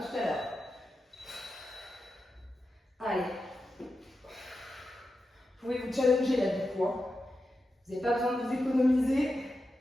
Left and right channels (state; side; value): normal; both; correlation 0.90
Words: tout à l'heure. Allez. Vous pouvez vous challenger là du coup. Hein. Vous n'avez pas besoin de vous économiser.